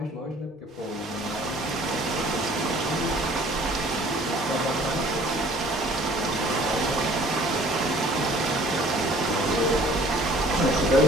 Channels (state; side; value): normal; both; correlation 0.53